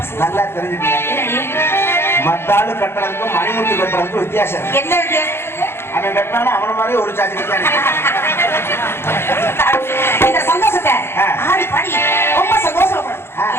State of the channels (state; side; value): late; right; 0.12 ms